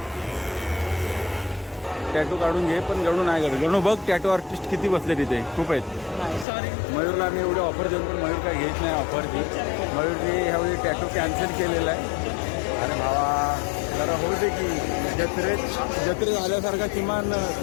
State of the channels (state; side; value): drops out; right; at 6.5 s